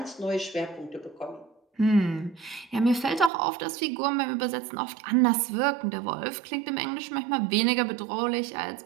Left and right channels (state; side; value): drops out; left; at 3.3 s